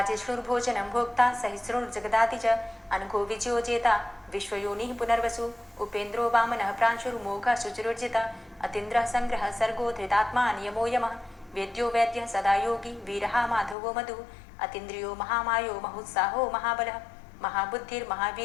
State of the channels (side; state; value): right; drops out; at 13.8 s